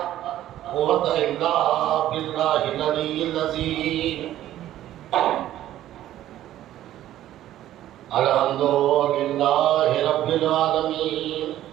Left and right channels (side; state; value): left; quieter; 13.1 dB